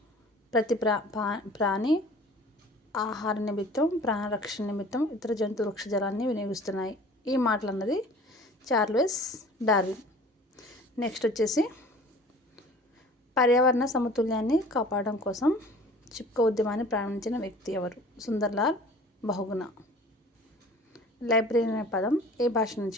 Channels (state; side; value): normal; both; correlation 0.46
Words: ప్రతి ప్రాణి ఆహార నిమిత్తం, ప్రాణరక్షణ నిమిత్తం ఇతర జంతు వృక్షజలాన్ని వినియోగిస్తున్నాయి. ఈ మాటలు అన్నది చార్లెస్ డార్విన్. నెక్స్ట్ వచ్చేసి పర్యావరణ సమతుల్యాన్ని కాపాడడం కోసం చిప్కో ఉద్యమాన్ని ప్రారంభించిన వ్యక్తి ఎవరు? సుందర్లాల్ బహుగుణ. లైబ్రరీ అనే పదం ఏ భాష